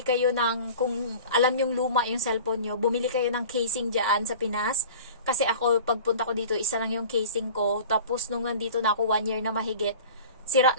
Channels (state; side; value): inverted; both; correlation -0.41